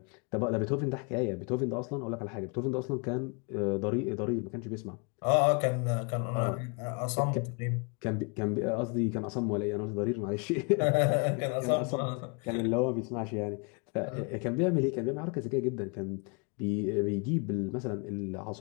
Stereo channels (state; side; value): quieter; right; 34.1 dB